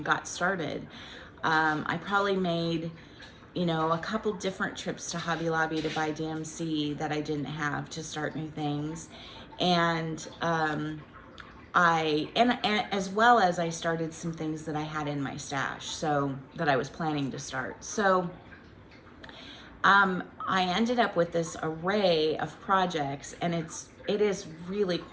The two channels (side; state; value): both; identical; correlation 1.00